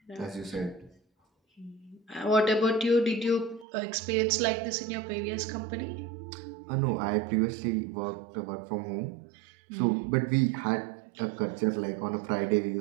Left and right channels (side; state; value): left; drops out; at 3.7 s